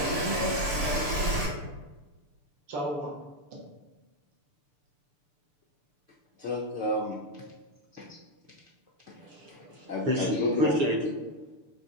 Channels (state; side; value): late; left; 6.9 ms